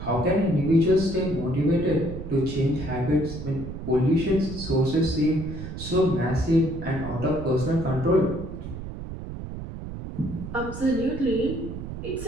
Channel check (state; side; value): noise; right; rumble, 9 dB below the sound